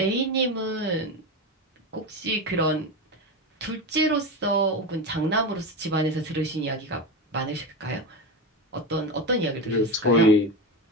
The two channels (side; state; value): both; normal; correlation 0.19